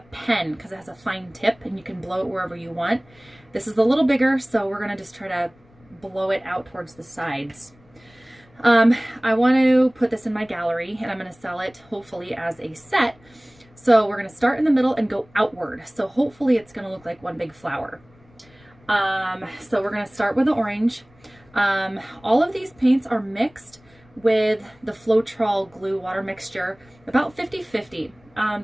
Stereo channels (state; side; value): noise; left; rumble, 29 dB below the sound